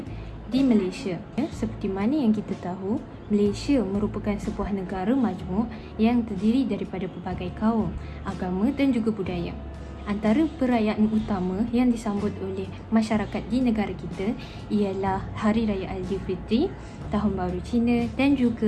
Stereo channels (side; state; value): both; identical; correlation 1.00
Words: di Malaysia. Seperti mana yang kita tahu, Malaysia merupakan sebuah negara majmuk yang terdiri daripada pelbagai kaum, agama dan juga budaya. Antara perayaan utama yang disambut oleh masyarakat di negara kita ialah Hari Raya Aidilfitri, Tahun Baru Cina dan